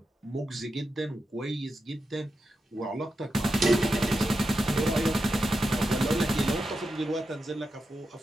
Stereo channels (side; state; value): both; normal; correlation 0.88